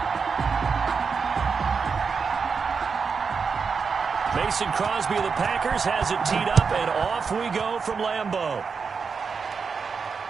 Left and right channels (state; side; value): quieter; left; 5.5 dB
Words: Mason Crosby of the Packers has it teed up, and off we go from Lambeau.